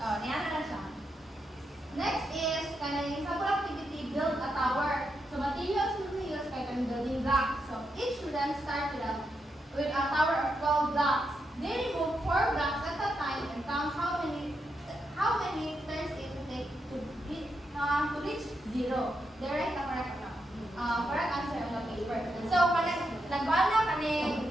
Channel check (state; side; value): normal; both; correlation 0.83